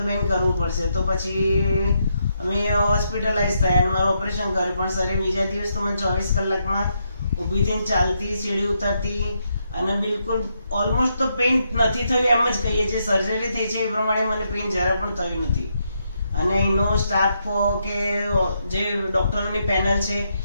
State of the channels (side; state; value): both; inverted; correlation -0.80